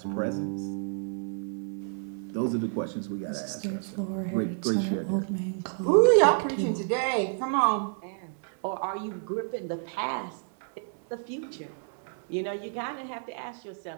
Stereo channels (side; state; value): left; silent; digital silence